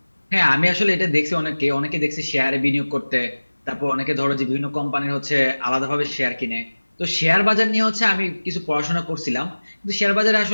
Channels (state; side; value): inverted; both; correlation -1.00